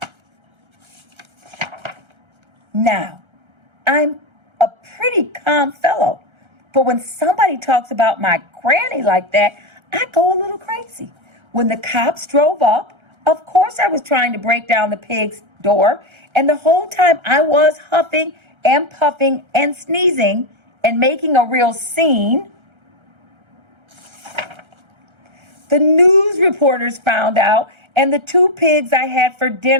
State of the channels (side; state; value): left; late; 1.3 ms